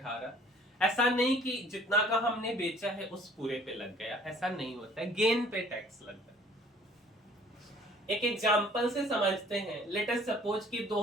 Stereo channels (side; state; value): both; normal; correlation 0.54